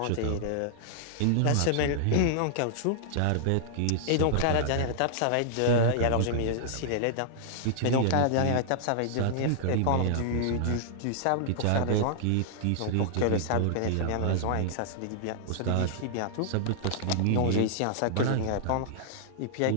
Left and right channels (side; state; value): both; different; correlation -0.01